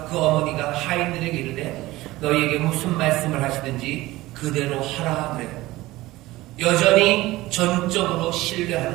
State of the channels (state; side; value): quieter; left; 18.3 dB